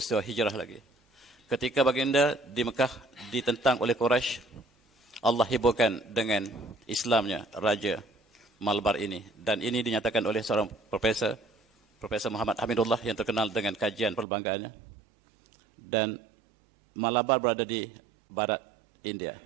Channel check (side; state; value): left; drops out; at 14.2 s